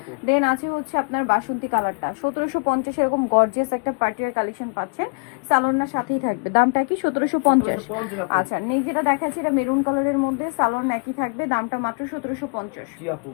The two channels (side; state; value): right; quieter; 35.4 dB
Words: দেন আছে হচ্ছে আপনার বাসন্তী কালারটা 1750। এরকম গর্জিয়াস একটা পার্টির কালেকশন পাচ্ছেন, সালোয়ারটার সাথেই থাকবে। দামটা কি? 1750। আচ্ছা, নেই যেটা দেখাচ্ছে এটা মেরুন কালারের মধ্যে, সালোয়ার একই থাকবে, দামটা মাত্র 1750। জি আপু।